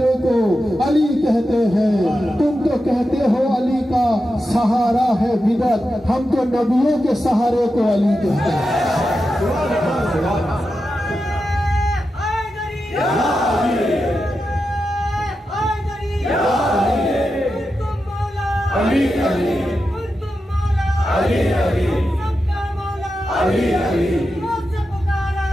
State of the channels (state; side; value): normal; both; correlation 0.90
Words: को अली कहते हैं। तुम तो कहते हो अली का सहारा है बिदत, हम तो नबियों के सहारे को अली कहते हैं। अली अली अली अली सबका मौला अली अली मुझसे पुकारा